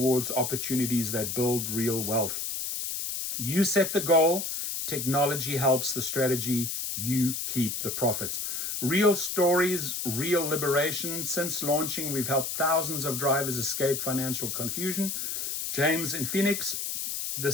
opportunities that build real wealth. You set the goal, technology helps the strategy, you keep the profits. Real stories, real liberation. Since launching, we've helped thousands of drivers escape financial confusion. James in Phoenix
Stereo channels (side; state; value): left; noise; hiss, 3 dB below the sound